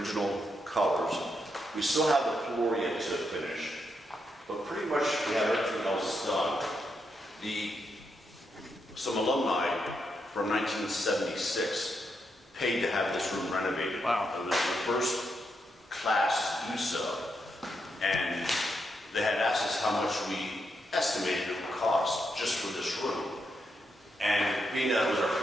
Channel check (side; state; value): both; normal; correlation 0.82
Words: colors. We still have the floor yet to finish, but pretty much we have everything else done. Some alumni from 1976 paid to have this room renovated. Wow. It was the first class to do so. And they had asked us how much we estimated it would cost just for this room. And being that it was our